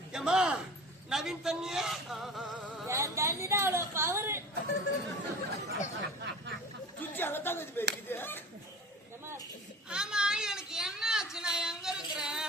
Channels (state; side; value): normal; both; correlation 0.38